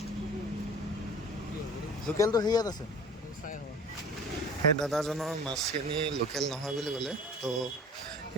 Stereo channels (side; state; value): both; normal; correlation 0.44